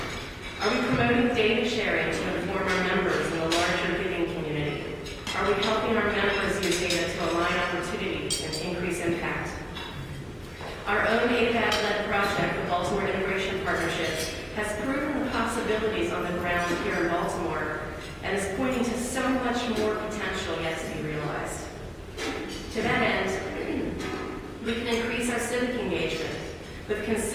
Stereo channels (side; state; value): both; identical; correlation 1.00